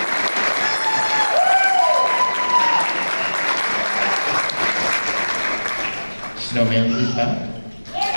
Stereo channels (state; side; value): inverted; both; correlation -1.00